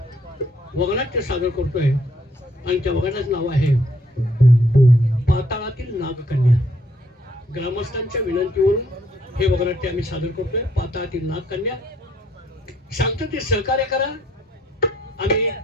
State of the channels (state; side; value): normal; both; correlation 0.67